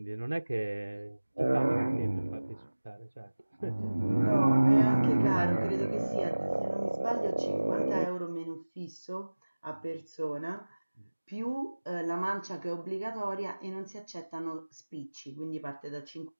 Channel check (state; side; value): inverted; both; correlation -1.00